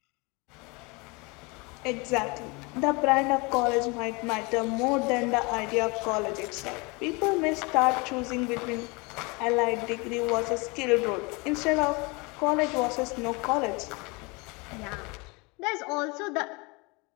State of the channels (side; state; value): right; quieter; 27.6 dB